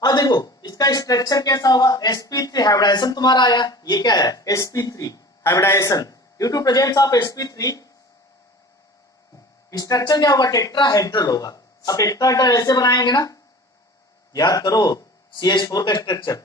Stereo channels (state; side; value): normal; both; correlation 0.41